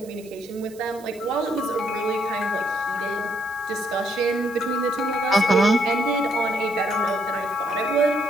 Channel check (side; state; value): right; noise; hiss, 23 dB below the sound